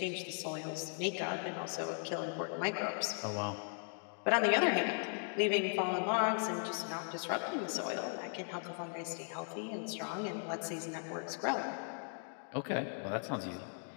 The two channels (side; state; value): right; silent; 53 dB below the other